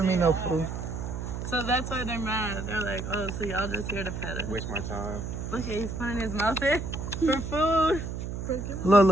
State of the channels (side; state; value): right; noise; hum, 5 dB below the sound